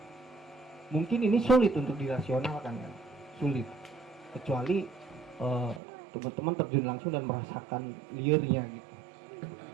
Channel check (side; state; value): left; drops out; at 5.8 s